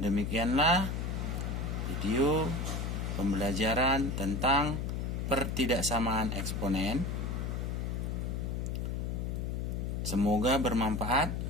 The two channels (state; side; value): noise; left; hum, 2 dB below the sound